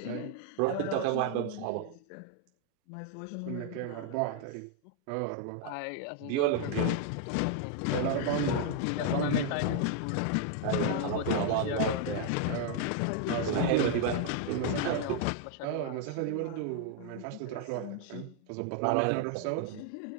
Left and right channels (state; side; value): different; both; correlation 0.00